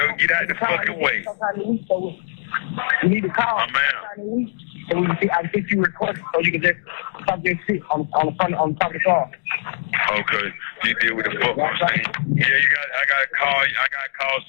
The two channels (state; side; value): silent; right; digital silence